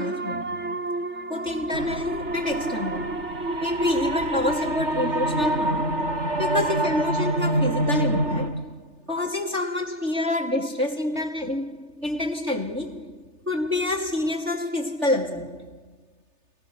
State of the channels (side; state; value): left; late; 3.3 ms